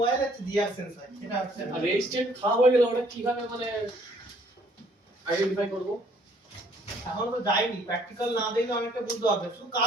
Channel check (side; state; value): both; normal; correlation 0.62